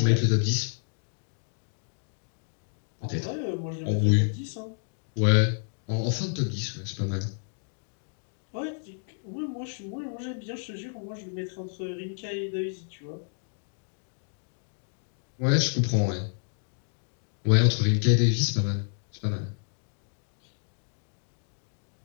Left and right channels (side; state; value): right; silent; digital silence